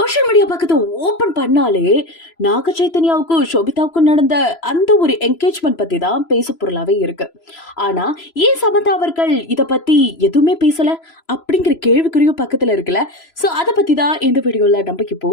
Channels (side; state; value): right; late; 3.0 ms